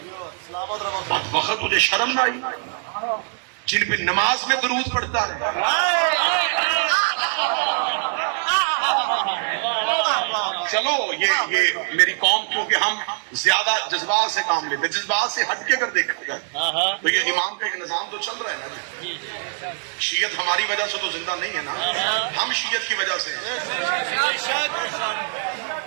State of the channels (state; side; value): silent; left; 57 dB below the other